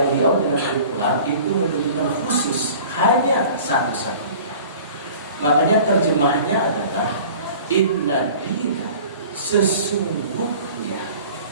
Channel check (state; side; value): inverted; both; correlation -0.45